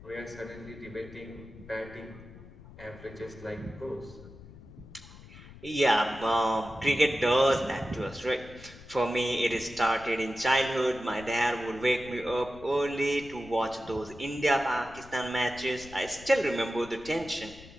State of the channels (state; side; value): noise; left; rumble, 18 dB below the sound